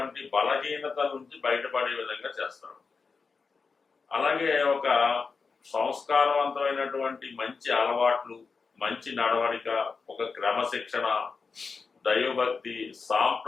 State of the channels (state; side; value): quieter; right; 4.8 dB